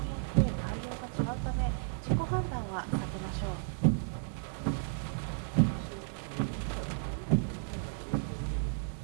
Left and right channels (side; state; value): left; silent; digital silence